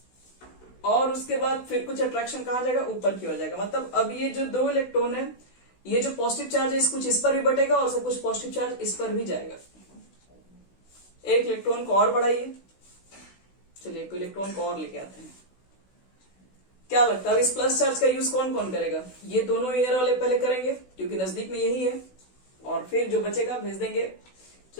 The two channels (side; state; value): right; late; 16 ms